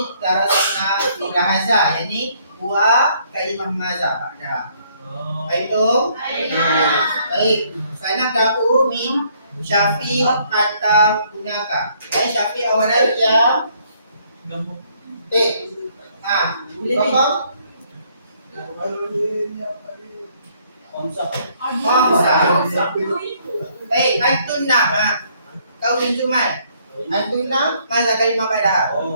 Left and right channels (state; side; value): inverted; both; correlation -0.66